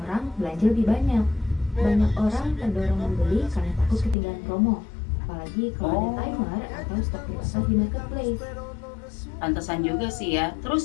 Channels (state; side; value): drops out; right; at 4.2 s